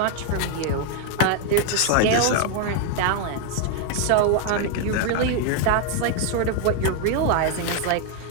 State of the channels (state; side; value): different; both; correlation 0.01